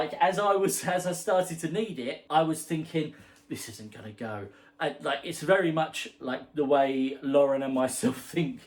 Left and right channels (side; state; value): both; identical; correlation 1.00